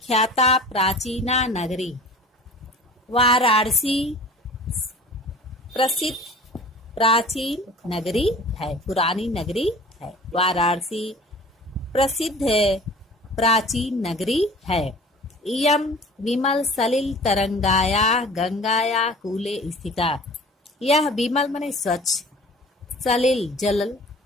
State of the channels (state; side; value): normal; both; correlation 0.44